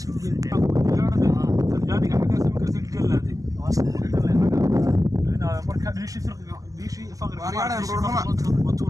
ku gelin Talyaaniga xaga sam karti galaadi ina marka diishi faqri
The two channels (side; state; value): left; late; 0.17 ms